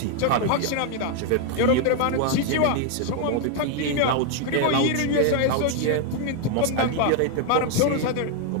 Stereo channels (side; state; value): both; different; correlation 0.00